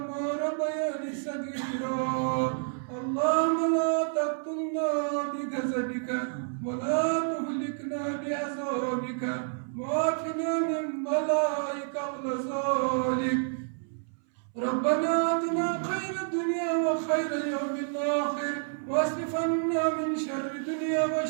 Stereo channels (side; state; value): left; silent; 58 dB below the other